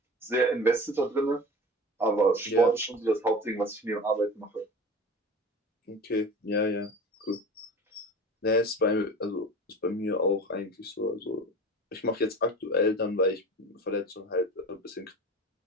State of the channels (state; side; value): normal; both; correlation 0.35